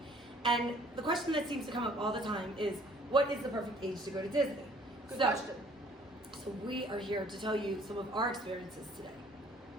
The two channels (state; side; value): normal; both; correlation 0.57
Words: And the question that seems to come up all the time is, what is the perfect age to go to Disney? Good question. So we are here to tell you some of our experiences today.